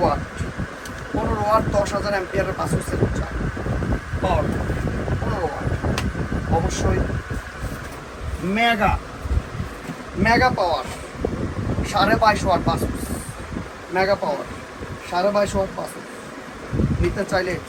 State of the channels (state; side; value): identical; both; correlation 1.00